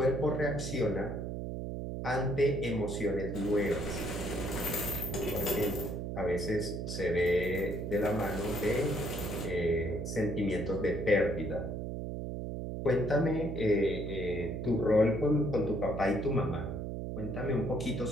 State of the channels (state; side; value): noise; right; hum, 4 dB below the sound